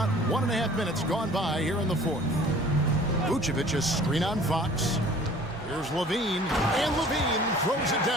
1.5 minutes gone by here in the fourth. Vucevic is screen on Fox. Here's Levine, and Levine throws it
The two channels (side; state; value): both; normal; correlation 0.49